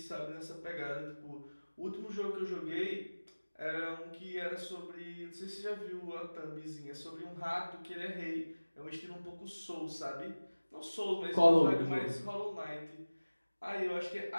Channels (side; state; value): both; inverted; correlation -1.00